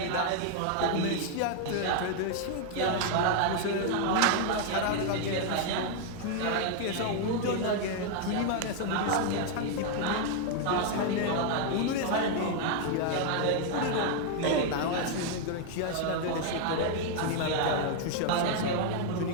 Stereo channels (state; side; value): different; both; correlation 0.00